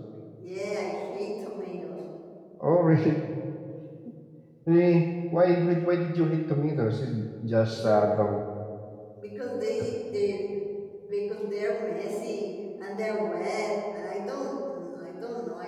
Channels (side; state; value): both; identical; correlation 1.00